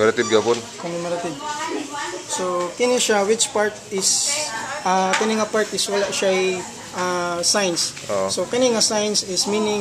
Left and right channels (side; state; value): both; identical; correlation 1.00